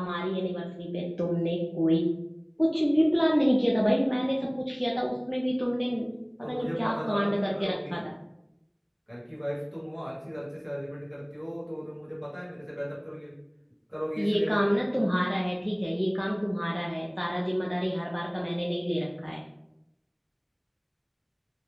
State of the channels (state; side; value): identical; both; correlation 1.00